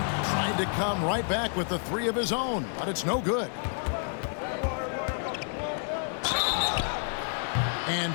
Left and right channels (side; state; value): right; silent; 58 dB below the other